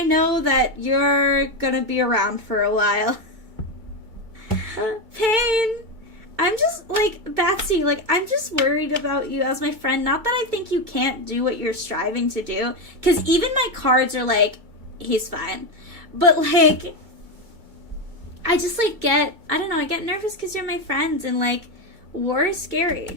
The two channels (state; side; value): late; left; 2.2 ms